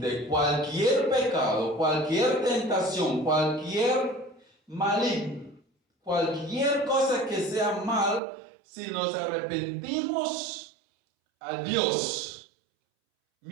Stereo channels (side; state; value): left; drops out; at 8.2 s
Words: cualquier pecado, cualquier tentación, cualquier maligno, cualquier cosa que sea mal, si nos arrepentimos a Dios,